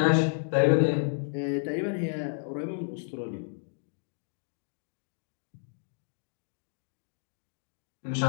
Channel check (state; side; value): silent; right; digital silence